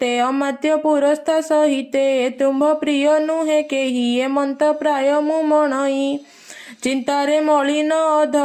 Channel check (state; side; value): identical; both; correlation 1.00